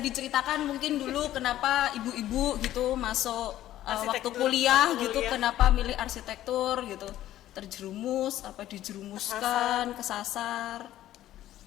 mungkin dulu kenapa ibu-ibu gitu masuk waktu Arsitektur, kuliah waktu gitu, kuliah. kenapa milih arsitektur gitu? Terjerumus apa dijerumuskan, kesasar?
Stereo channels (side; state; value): right; quieter; 13.4 dB